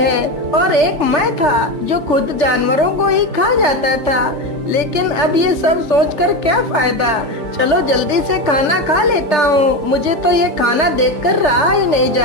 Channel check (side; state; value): left; late; 3.3 ms